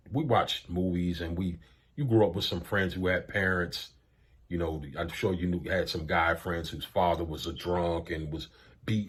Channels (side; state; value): both; identical; correlation 1.00